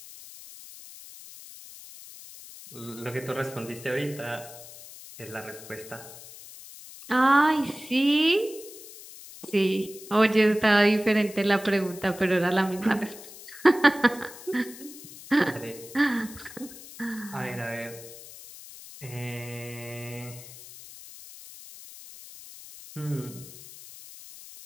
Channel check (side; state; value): left; noise; hiss, 16 dB below the sound